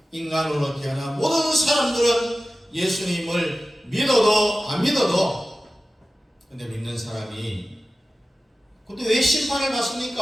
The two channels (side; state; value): both; normal; correlation 0.95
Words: 인간으로 태어난 모든 사람들은 예수님을 믿어도 안 믿어도, 근데 믿는 사람이 근데 왜 심판을